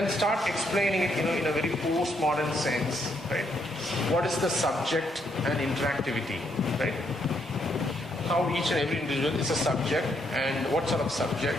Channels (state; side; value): normal; both; correlation 0.74